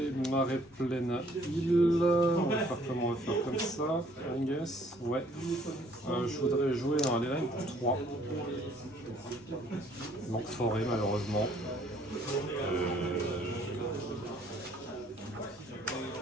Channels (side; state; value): both; normal; correlation 0.61